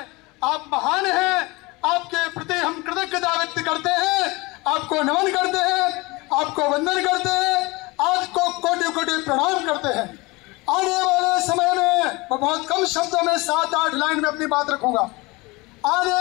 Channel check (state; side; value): quieter; right; 23.7 dB